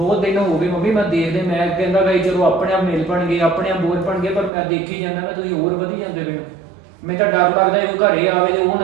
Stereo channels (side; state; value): left; drops out; at 4.5 s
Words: ਦਿਨ ਹੋ ਗਏ ਮੰਮੀ, ਮੈਂ ਦੇਖਦੇ, ਮੈਂ ਕਹਿੰਦਾ ਗਈ ਚਲੋ ਆਪਣੇ ਆਪ ਮਿਲ ਪਣਗੇ, ਆਪਣੇ ਆਪ ਬੋਝ ਪਣਗੇ, ਪਰ ਮੈਂ ਦੇਖੀ ਜਾਂਦਾ ਕਿ ਤੁਸੀਂ ਹੋਰ ਵਧੀ ਜਾਂਦੇ ਪਏ ਹੋ। ਮੈਨੂੰ ਤਾਂ ਡਰ ਲੱਗਦਾ ਉਹ ਘਰੇ ਆਵੇ ਤੇ ਉਹ